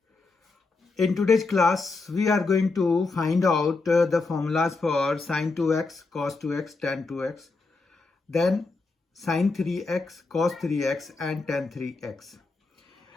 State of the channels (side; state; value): right; quieter; 3.8 dB